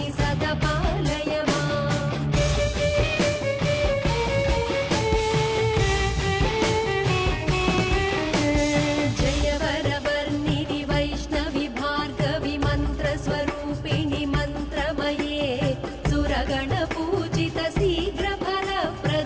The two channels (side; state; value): both; identical; correlation 1.00